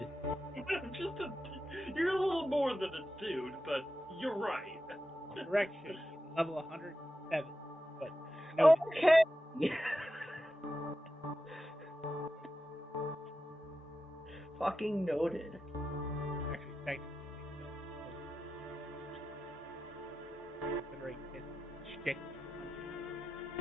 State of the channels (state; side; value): normal; both; correlation 0.91